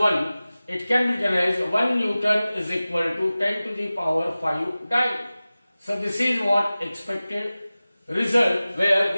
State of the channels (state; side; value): inverted; both; correlation -0.97